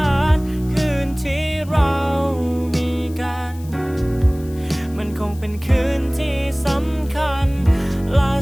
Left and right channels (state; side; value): noise; left; hiss, 23 dB below the sound